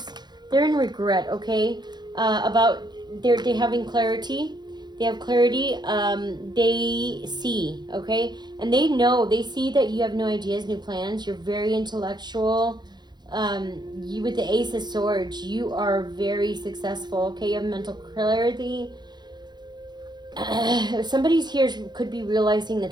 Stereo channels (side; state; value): left; late; 0.21 ms